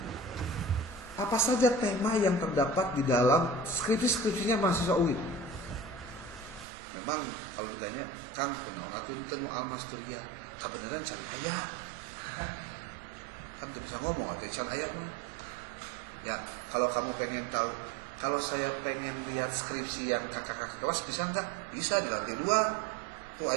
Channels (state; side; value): drops out; left; at 6.7 s